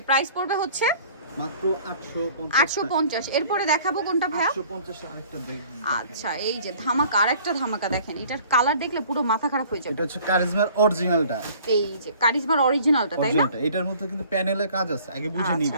প্রাইস পড়বে হচ্ছে মাত্র 850 850। এরপরে দেখাবো কোনটা ভাইয়া? 850 আরেকটা দেখুন। আচ্ছা, এই যে ধামাকা, আরেকটা ধামাকা দেখেন। এটার কালার দেখলে পুরো মাথা খারাপ হয়ে যাবে। এটা হচ্ছে কারিজমার অরিজিনালটা। এই যে কারিজমার অরিজিনালটা, তাই না? এটার মধ্যে কিন্তু প্যানেলে কাজ আছে, আগে বুঝে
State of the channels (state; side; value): inverted; both; correlation -0.52